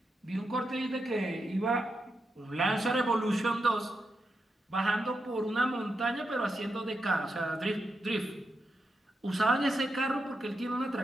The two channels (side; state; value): both; normal; correlation 0.86